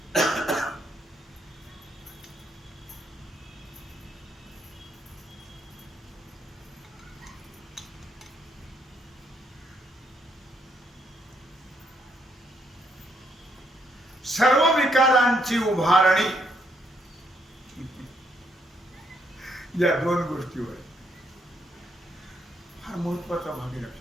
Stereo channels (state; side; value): normal; both; correlation 0.74